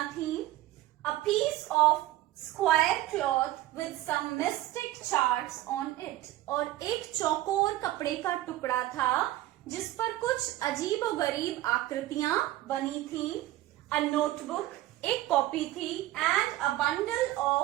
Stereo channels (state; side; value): quieter; left; 15.6 dB